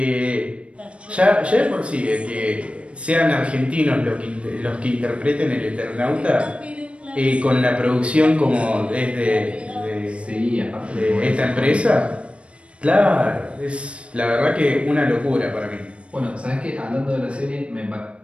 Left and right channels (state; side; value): late; left; 0.060 ms